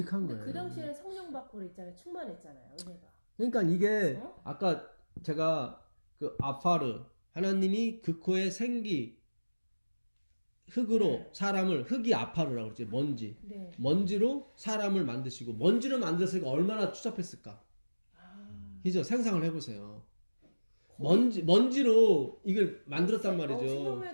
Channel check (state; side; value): inverted; both; correlation -1.00